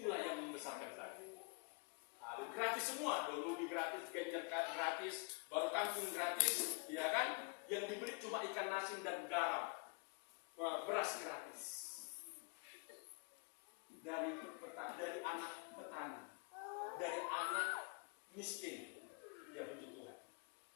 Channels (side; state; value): right; quieter; 33.5 dB